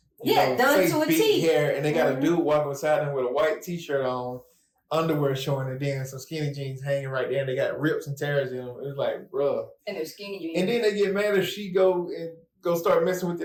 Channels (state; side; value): identical; both; correlation 1.00